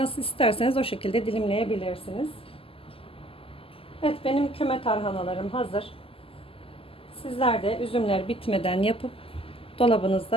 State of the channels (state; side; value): late; right; 0.26 ms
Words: isterseniz o şekilde dilimleyebilirsiniz. Evet, benim küme tarhanalarım hazır. Sizler de üzümler bitmeden yapıp